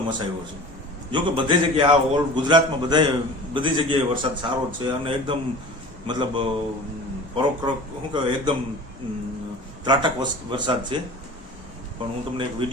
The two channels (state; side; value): normal; both; correlation 0.39